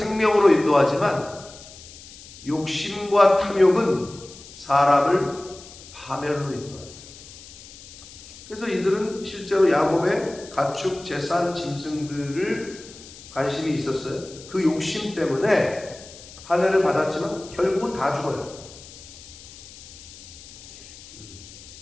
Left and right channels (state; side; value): noise; left; hiss, 18 dB below the sound